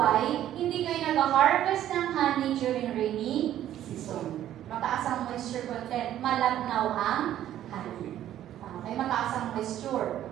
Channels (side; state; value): left; quieter; 12.0 dB